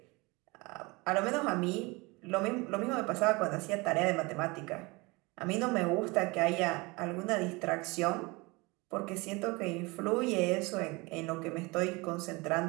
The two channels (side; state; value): left; quieter; 25.1 dB